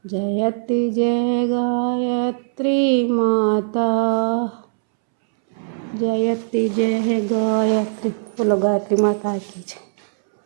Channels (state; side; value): silent; left; 66 dB below the other